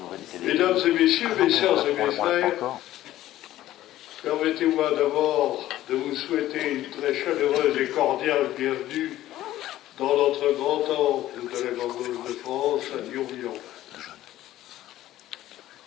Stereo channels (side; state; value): right; quieter; 14.2 dB